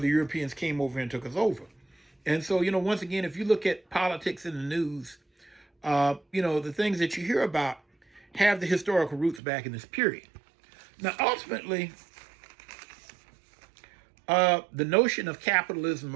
Europeans came over and took us over. And so, once again, if you look at politics in the news, the things that you hear about have the historical roots back in this period. Now, ultimately, the notion of capitalism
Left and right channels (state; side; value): drops out; left; at 9.4 s